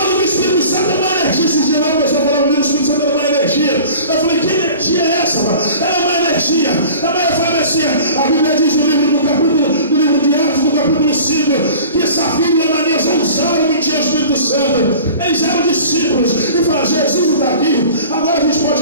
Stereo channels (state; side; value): inverted; both; correlation -0.42